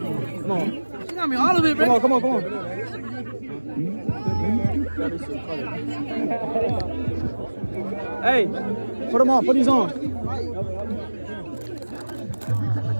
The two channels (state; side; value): inverted; both; correlation -1.00